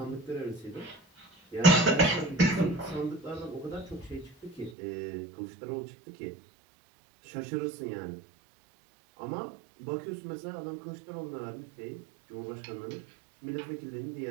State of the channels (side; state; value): left; drops out; at 4.8 s